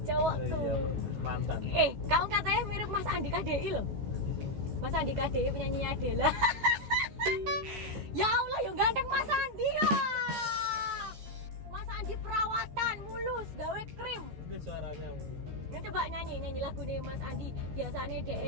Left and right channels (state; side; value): late; left; 14 ms